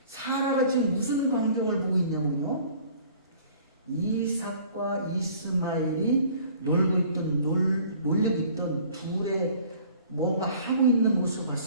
사라가 지금 무슨 광경을 보고 있냐면요, 이삭과 이스마엘이 놀고 있던 둘의 뭔가 하고 있는 모습을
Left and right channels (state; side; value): inverted; both; correlation -0.52